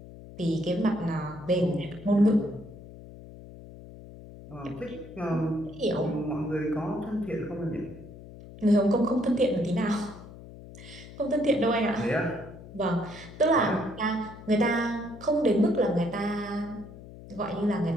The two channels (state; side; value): noise; left; hum, 16 dB below the sound